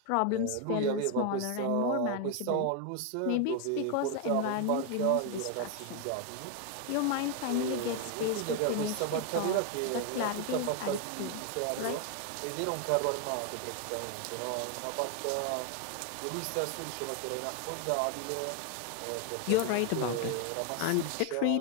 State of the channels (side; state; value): both; different; correlation 0.01